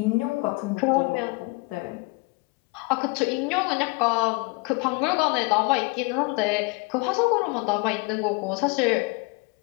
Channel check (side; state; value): right; quieter; 28.7 dB